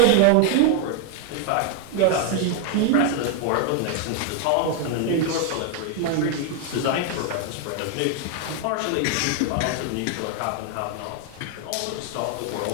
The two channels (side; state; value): both; different; correlation 0.00